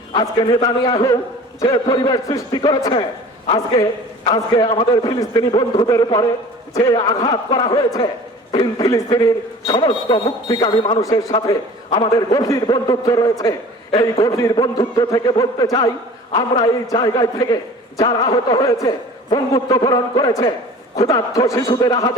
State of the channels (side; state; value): both; normal; correlation 0.43